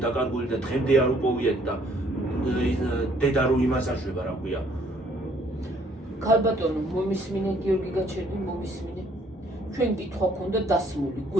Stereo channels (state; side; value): normal; both; correlation 0.63